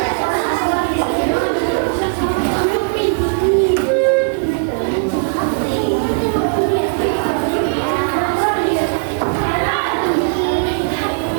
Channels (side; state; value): left; silent; digital silence